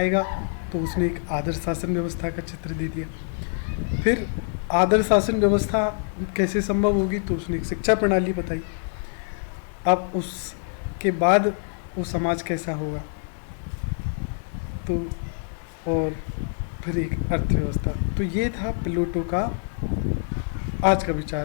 तो उसने एक आदर्श शासन व्यवस्था का चित्र दे दिया। फिर आदर्श शासन व्यवस्था कैसे संभव होगी, तो उसने एक शिक्षा प्रणाली बताई। अब उसके बाद वो समाज कैसा होगा, तो और फिर एक अर्थव्यवस्था। तो ये था प्लेटो का आज का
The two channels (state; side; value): silent; right; digital silence